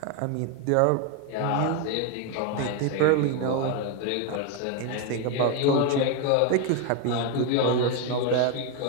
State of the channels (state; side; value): different; both; correlation 0.01